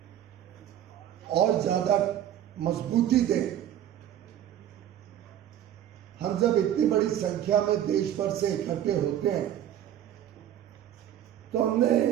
और ज्यादा मजबूती दें। हम जब इतनी बड़ी संख्या में देश भर से इकट्ठे होते हैं तो हमने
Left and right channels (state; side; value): quieter; left; 11.1 dB